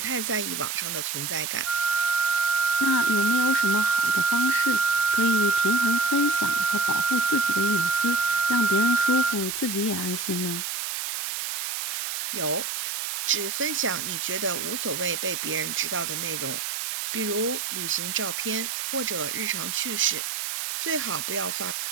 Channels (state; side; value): noise; right; hiss, 4 dB below the sound